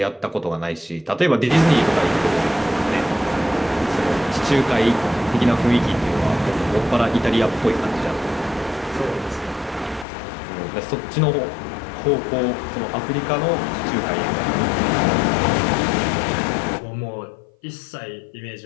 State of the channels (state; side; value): drops out; right; at 10.1 s